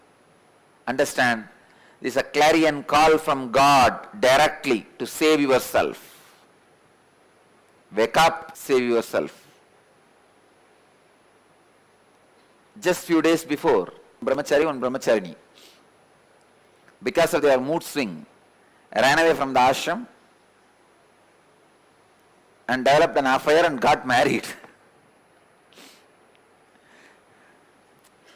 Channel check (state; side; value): identical; both; correlation 1.00